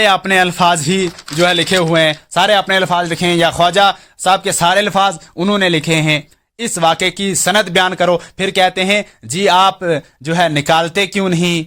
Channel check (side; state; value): both; identical; correlation 1.00